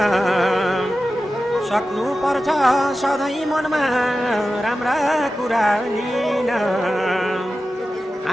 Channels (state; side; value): normal; both; correlation 0.93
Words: सक्नु पर्छ सधैँ मनमा राम्रा कुरा लिन